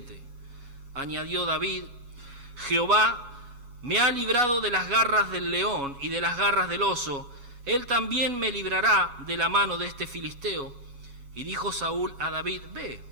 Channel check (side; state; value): left; late; 7.2 ms